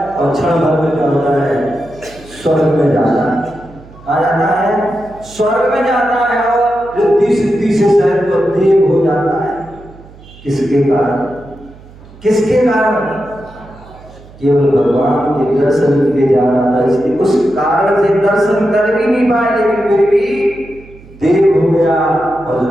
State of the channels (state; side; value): noise; right; hum, 22 dB below the sound